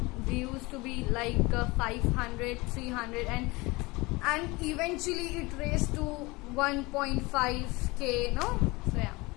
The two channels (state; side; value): quieter; right; 23.6 dB